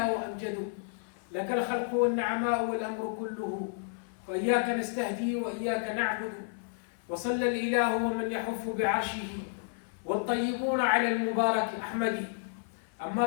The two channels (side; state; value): right; silent; 57 dB below the other